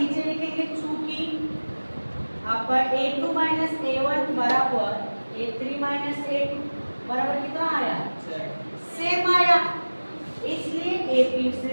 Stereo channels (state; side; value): inverted; both; correlation -1.00